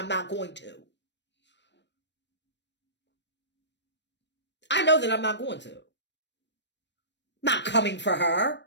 not going to. I know that I'm not going to. Not coming for her.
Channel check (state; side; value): late; right; 0.51 ms